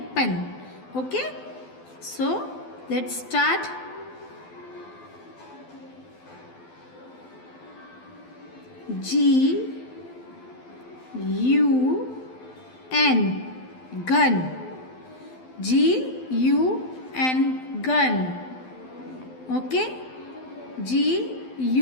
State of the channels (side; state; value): right; late; 12 ms